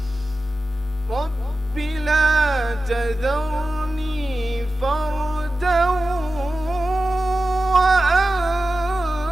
رب لا تذرني فردا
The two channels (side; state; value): both; normal; correlation 0.93